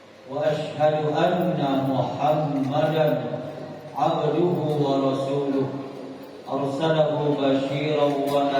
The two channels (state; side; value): identical; both; correlation 1.00